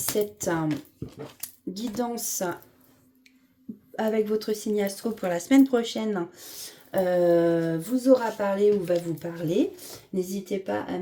guidance avec votre signe astro pour la semaine prochaine vous aura parlé ou va vous parler. N'hésitez pas à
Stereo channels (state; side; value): identical; both; correlation 1.00